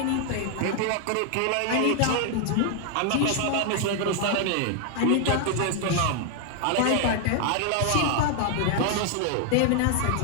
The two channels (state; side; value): different; both; correlation 0.00